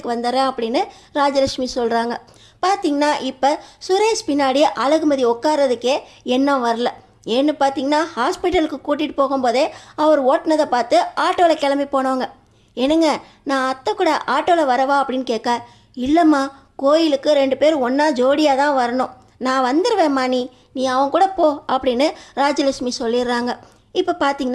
வந்துடுறேன் அப்படின்னு ராஜலக்ஷ்மி சொல்கிறாங்க. பார்த்திங்கன்னா இப்போ சுரேஷ் பின்னாடி அழகுமதி உட்காரதுக்கே எண்ணம் வரல. ஏன்னு பார்த்தீங்கன்னா ஹாஸ்பிட்டலுக்கு கூட்டிகிட்டு போகும்போதே அவர் ஓட்டினதை பார்த்து ஆட்டோவில் கிளம்பி போனவங்க. என்னங்க நான் அத்தை கூட ஆட்டோவில் வரவா அப்படின்னு கேட்க, இல்லைம்மா கோயிலுக்கு 2 பேர் ஒன்றா ஜோடியாக தான் வரணும், நான் வந்துடுவேம்மா, நீ அவன் கூட போ அப்படின்னு ராஜலட்சுமி சொல்லிடுறாங்க. இப்போ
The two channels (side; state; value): both; identical; correlation 1.00